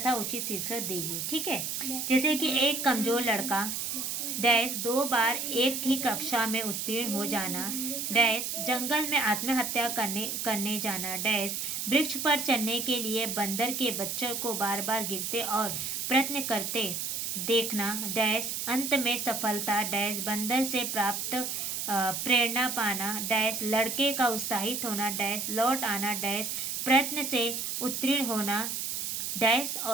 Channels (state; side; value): noise; right; hiss, 3 dB below the sound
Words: उचित शीर्षक दीजिए। ठीक है, जैसे कि एक कमजोर लड़का 2 बार एक ही कक्षा में उत्तीर्ण हो जाना, डैश जंगल में आत्महत्या करने जाना। डैश वृक्ष पर चढ़ने के लिए बंदर के बच्चों को बार बार गिरते और प्रयत्न करते देखना। डैश अंत में सफलता। डैश बंदर से प्राप्त प्रेरणा पाना। डैश लड़के का उत्साहित होना। डैश लौट आना। डैश प्रयत्न से उत्तीर्ण होना। डैश